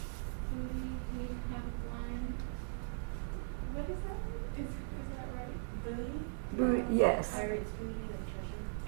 booty he had won. What is that? Is that right? Booty? Yes. Pirates' booty and treasure.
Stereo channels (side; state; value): left; silent; digital silence